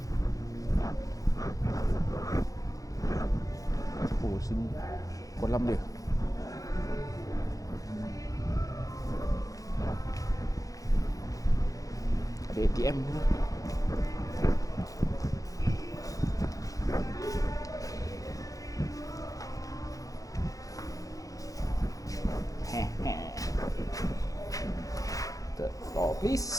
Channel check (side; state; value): right; late; 0.17 ms